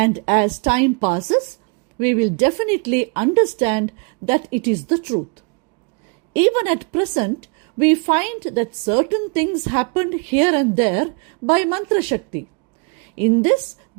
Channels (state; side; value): quieter; left; 33.9 dB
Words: as time passes, we will definitely understand that it is the truth. Even at present, we find that certain things happened here and there by mantra shakti. In this,